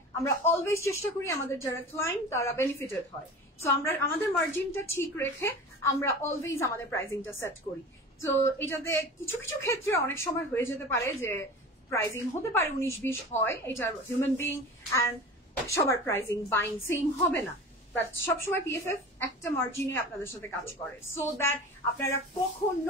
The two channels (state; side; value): normal; both; correlation 0.35